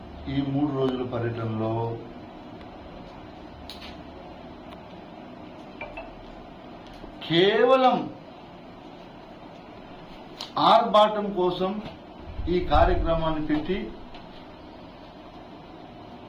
ఈ 3 రోజుల పర్యటనలో? కేవలం ఆర్భాటం కోసం ఈ కార్యక్రమాన్ని పెట్టి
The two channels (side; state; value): both; identical; correlation 1.00